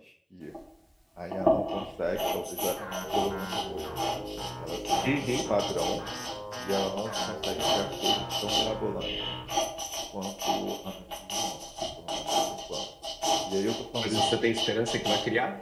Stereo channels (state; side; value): identical; both; correlation 1.00